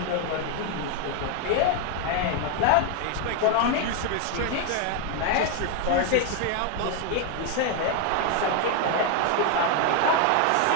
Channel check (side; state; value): both; different; correlation 0.01